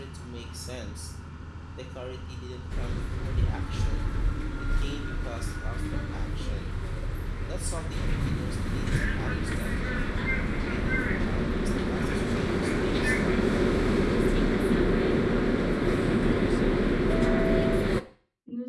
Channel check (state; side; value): identical; both; correlation 1.00